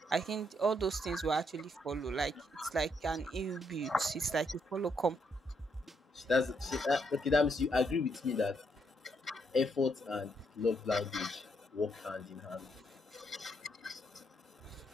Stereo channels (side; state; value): both; normal; correlation 0.75